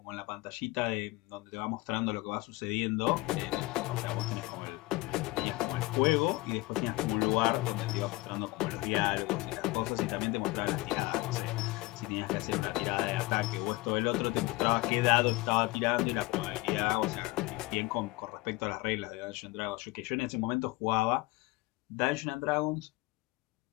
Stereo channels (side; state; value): right; quieter; 21.0 dB